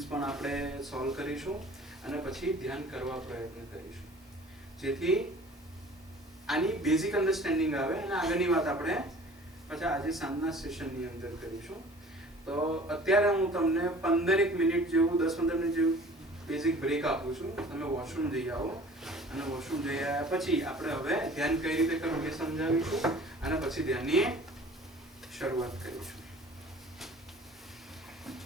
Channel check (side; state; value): both; normal; correlation 0.47